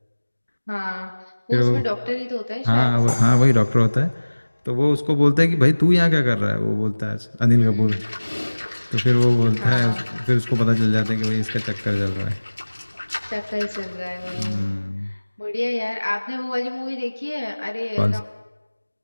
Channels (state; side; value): inverted; both; correlation -1.00